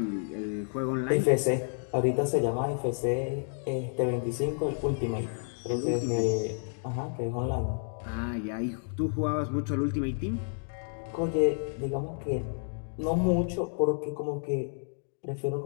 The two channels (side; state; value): right; silent; 58 dB below the other